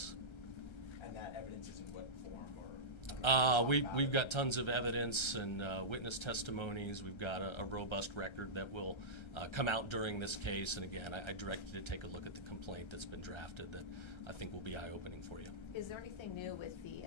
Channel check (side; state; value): right; late; 1.3 ms